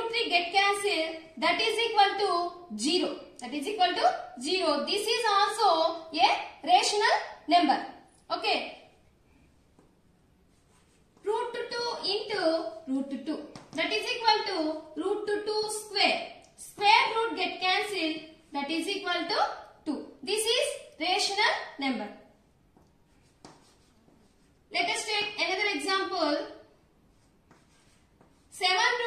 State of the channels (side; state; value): both; identical; correlation 1.00